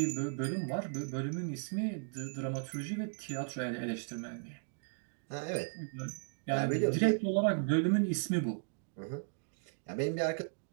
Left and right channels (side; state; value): left; silent; digital silence